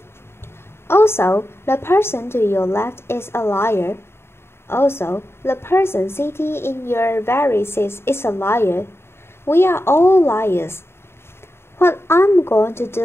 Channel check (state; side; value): late; right; 0.12 ms